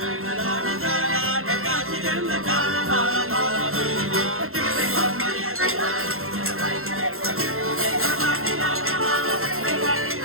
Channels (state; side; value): late; left; 0.62 ms